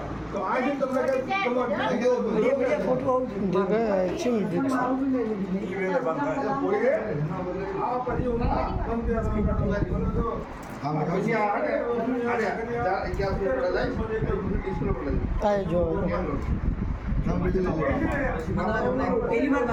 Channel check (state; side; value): identical; both; correlation 1.00